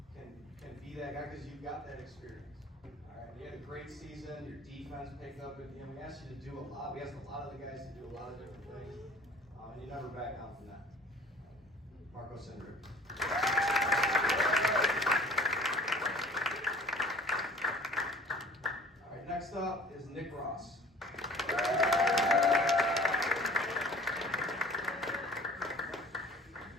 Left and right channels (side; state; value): both; normal; correlation 0.48